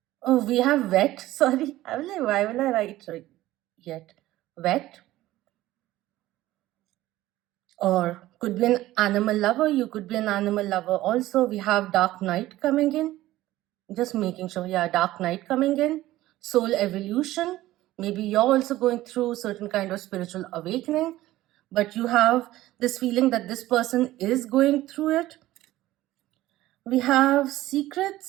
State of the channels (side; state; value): left; quieter; 15.9 dB